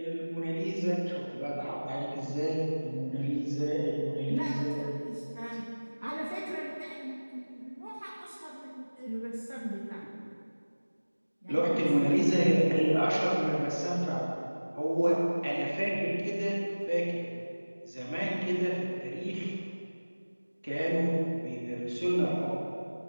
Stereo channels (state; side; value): inverted; both; correlation -1.00